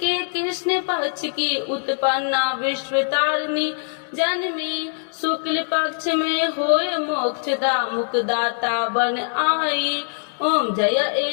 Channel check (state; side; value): silent; right; digital silence